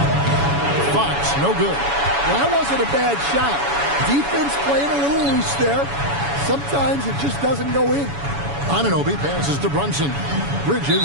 Fox, no good. Well, that wasn't a bad shot. Defense playing a little loose there. Sometimes it just doesn't go in. Anunoby passes to Brunson.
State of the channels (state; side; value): late; left; 7.1 ms